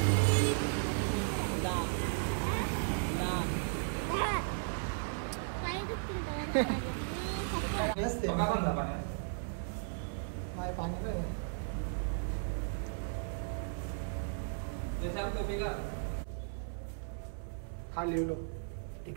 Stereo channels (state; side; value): silent; left; 54 dB below the other